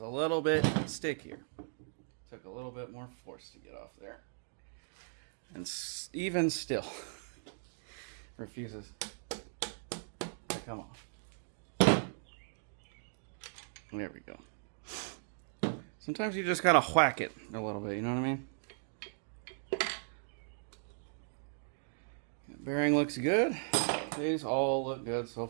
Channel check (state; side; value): silent; left; digital silence